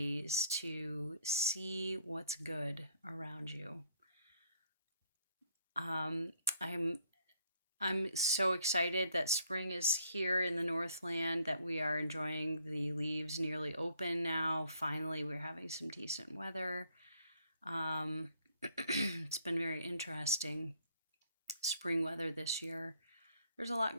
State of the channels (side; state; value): both; inverted; correlation -0.65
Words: to see what's good around you. Um, I'm I'm so excited that spring is here in the Northland, that we are enjoying the leaves nearly open now. Finally, we're having some decent weather. Um, it's been very interesting spring weather this year. There's a lot